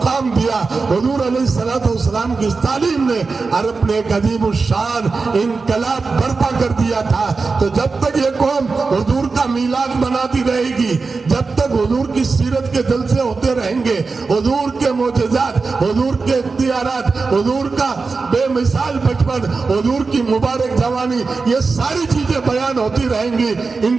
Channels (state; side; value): quieter; left; 4.3 dB